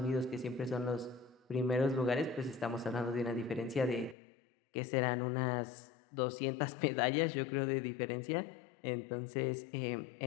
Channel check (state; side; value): drops out; right; at 4.2 s